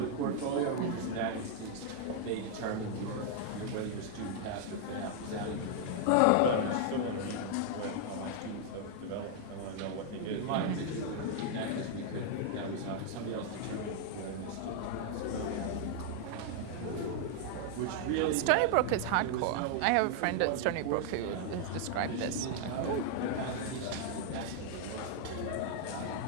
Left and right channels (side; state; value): both; different; correlation 0.00